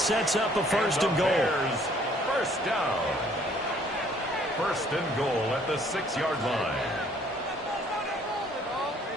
up a 1st and goal. First down. 1st and goal at the 6-yard line.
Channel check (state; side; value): normal; both; correlation 0.60